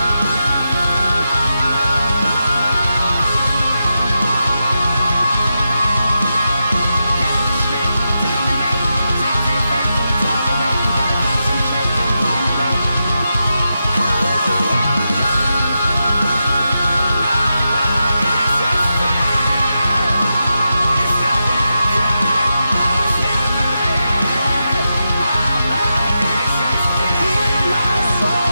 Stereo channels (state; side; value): inverted; both; correlation -0.88